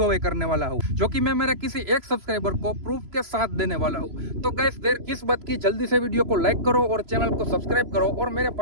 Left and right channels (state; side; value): late; left; 3.0 ms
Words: away करने वाला हूँ, जो कि मैं मेरे किसी एक सब्सक्राइबर को प्रूफ के साथ देने वाला हूँ। तो गाइस देर किस बात की, जल्दी से वीडियो को लाइक करो और चैनल को सब्सक्राइब करो और मेरे